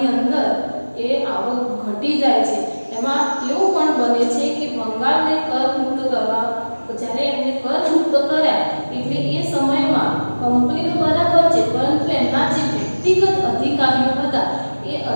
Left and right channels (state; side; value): inverted; both; correlation -1.00